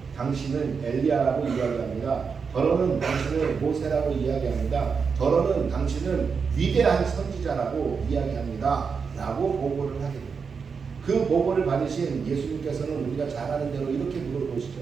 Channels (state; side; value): quieter; left; 5.6 dB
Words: 당신은 엘리야라고 이야기합니다. 더러는 당신은 모세라고 이야기합니다. 더러는 당신은 위대한 선지자라고 이야기합니다. 라고 보고를 하게 됩니다. 그 보고를 받으신 예수님께서는 우리가 잘 아는 대로 이렇게 물어보시죠.